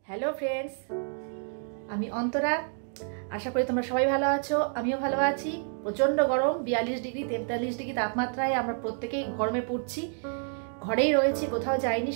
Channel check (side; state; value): left; silent; 59 dB below the other